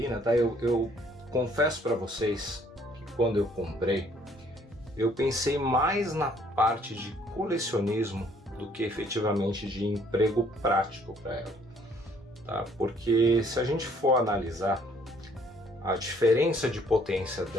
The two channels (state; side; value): normal; both; correlation 0.62